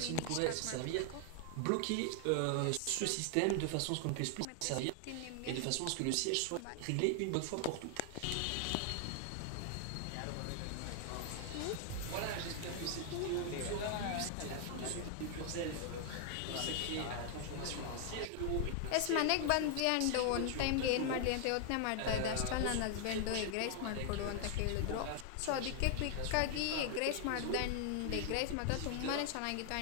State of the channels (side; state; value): both; different; correlation 0.00